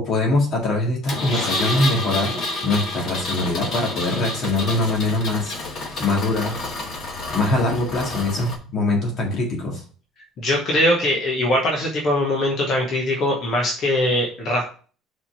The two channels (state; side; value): normal; both; correlation 0.51